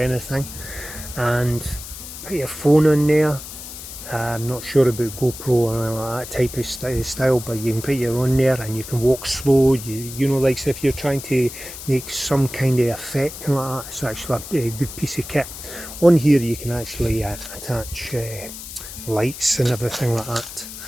and put your phone on there. I'm not sure about GoPro or that type of style, but you can put your on there and you can walk slow. You know, like if you're trying to make some kind of effect like that, it's actually a good piece of kit. On here you can actually attach lights and everything like that.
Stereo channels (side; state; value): left; noise; hiss, 12 dB below the sound